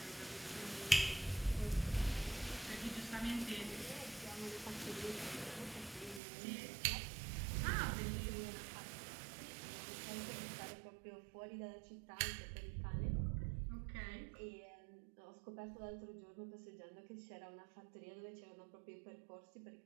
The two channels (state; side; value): drops out; left; at 6.2 s